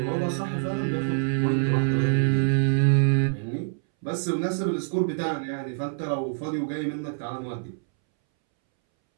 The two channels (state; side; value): silent; left; 61 dB below the other